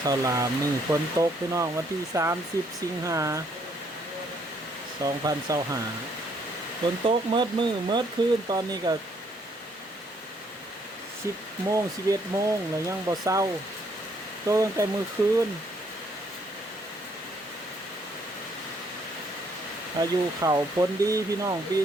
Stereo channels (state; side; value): normal; both; correlation 0.68